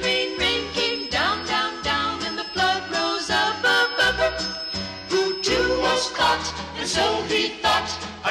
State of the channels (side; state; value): both; identical; correlation 1.00